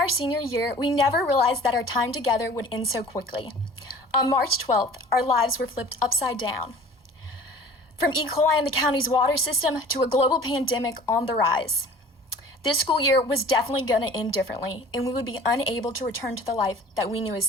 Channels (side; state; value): both; normal; correlation 0.45